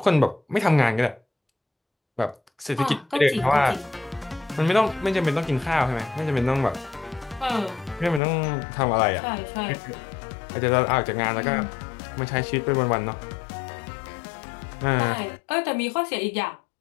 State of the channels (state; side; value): drops out; right; at 8.2 s